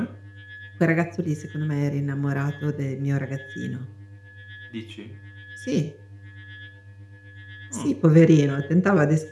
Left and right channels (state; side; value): identical; both; correlation 1.00